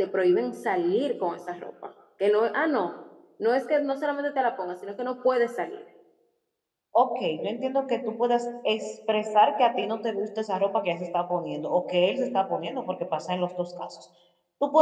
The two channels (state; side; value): identical; both; correlation 1.00